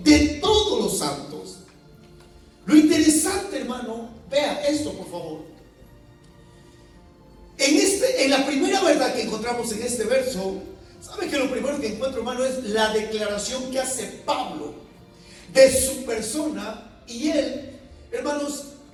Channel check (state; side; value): identical; both; correlation 1.00